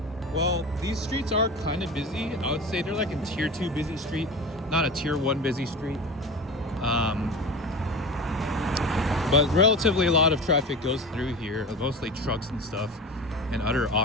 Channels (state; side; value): normal; both; correlation 0.30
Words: Well, these streets are kind of busy. I would say they're like a tier 2 busy street, not a tier 1 busy street. But relatively a lot of traffic goes through here, mostly trucks and stuff and other